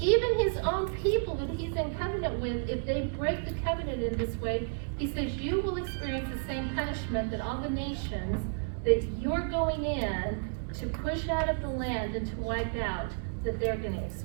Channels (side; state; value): left; silent; digital silence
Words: his own people that he's in covenant with, if they break the covenant in this way, he says you will experience the same punishment that all the nations that you're going in to push out of the land and to wipe out, that they're going to